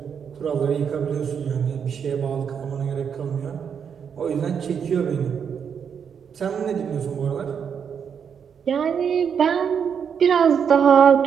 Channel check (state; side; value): quieter; left; 7.3 dB